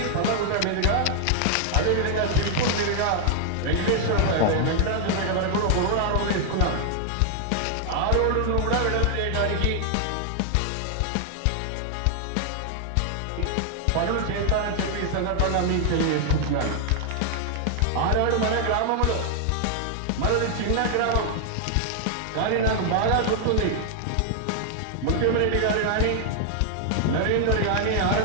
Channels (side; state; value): both; different; correlation 0.00